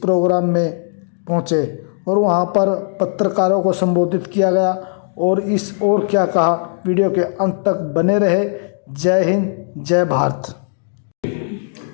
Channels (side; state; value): right; silent; digital silence